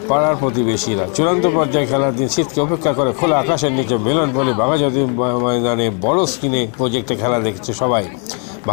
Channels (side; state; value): right; quieter; 39.1 dB